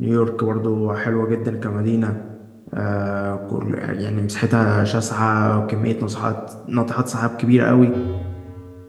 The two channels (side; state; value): both; identical; correlation 1.00